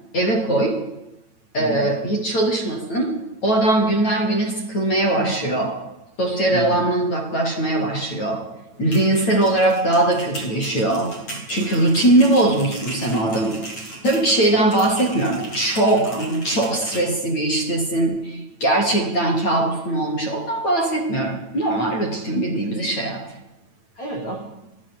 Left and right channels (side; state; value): right; late; 9.0 ms